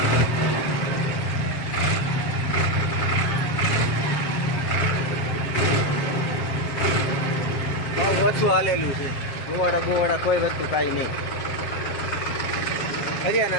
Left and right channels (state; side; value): late; right; 7.5 ms